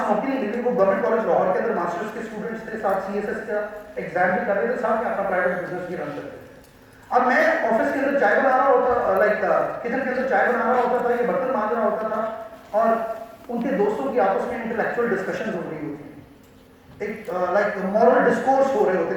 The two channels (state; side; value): identical; both; correlation 1.00